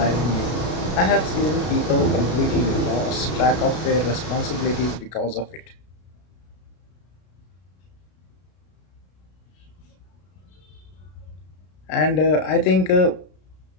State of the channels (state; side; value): late; right; 33 ms